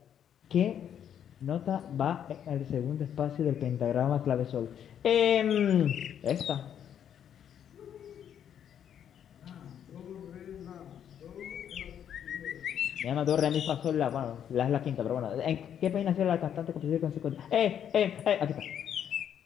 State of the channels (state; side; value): quieter; right; 9.2 dB